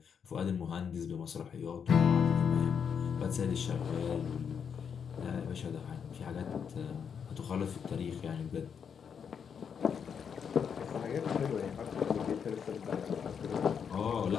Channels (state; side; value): quieter; right; 7.1 dB